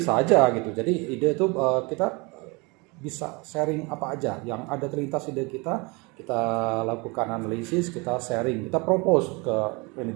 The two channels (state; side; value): quieter; left; 27.9 dB